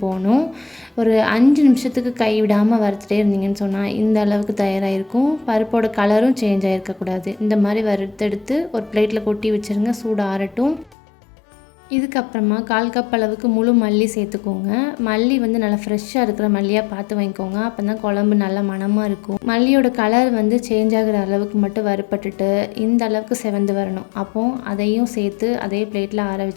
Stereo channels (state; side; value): drops out; right; at 11.0 s